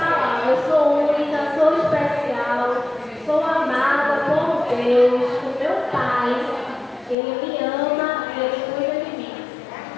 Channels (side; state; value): right; drops out; at 7.2 s